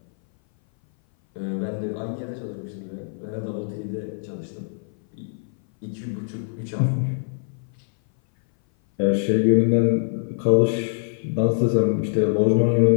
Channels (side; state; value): right; silent; 58 dB below the other